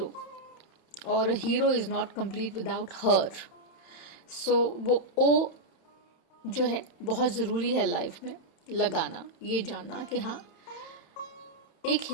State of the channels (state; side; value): late; right; 31 ms